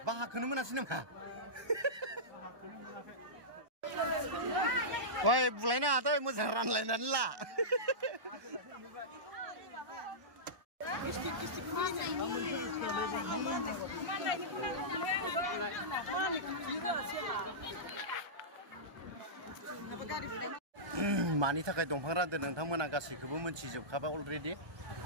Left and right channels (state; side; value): late; left; 1.1 ms